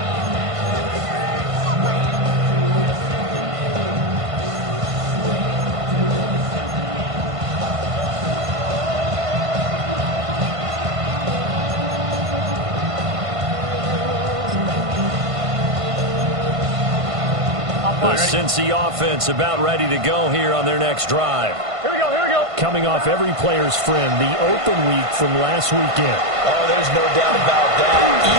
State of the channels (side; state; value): left; late; 1.5 ms